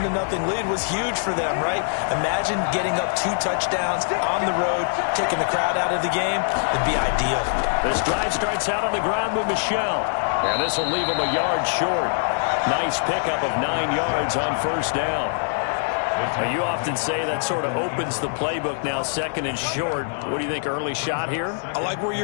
lead was huge for them, right? Imagine getting up 2 touchdowns on the road, taking the crowd out of the game. It'd be ideal. This drive starts out on the ground with Michel. And this will leave them a yard short. Nice pickup of 9 yards on 1st down. You often say that sort of opens the playbook now, 2nd and short. What do you think, early shot here? I like where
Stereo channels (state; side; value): silent; right; digital silence